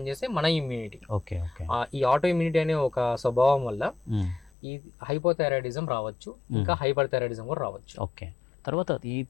మన ఇమ్యూనిటీ. ఈ ఆటో ఇమ్యూనిటీ అనే ఒక స్వభావం వల్ల ఈ హైపోథైరాయిడిజం రావచ్చు, ఇంకా హైపర్ థైరాయిడిజం కూడా రావచ్చు. తర్వాత ఈ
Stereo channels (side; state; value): right; drops out; at 4.5 s